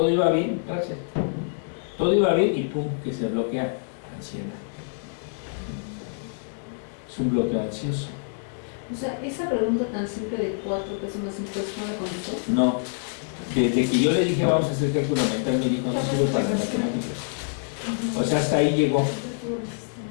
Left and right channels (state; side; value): silent; right; digital silence